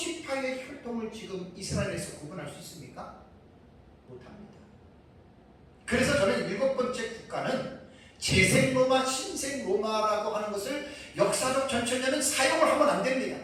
혈통을 지금 이스라엘에서 구분할 수 있습니까? 못합니다. 그래서 저는 7번째 국가는 재생 로마, 신생 로마라고 하는 것을 역사적 전천년은 사용을 하면 안 됩니다.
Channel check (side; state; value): both; identical; correlation 1.00